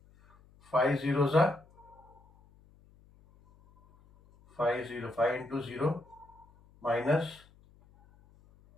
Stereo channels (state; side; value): noise; left; hum, 28 dB below the sound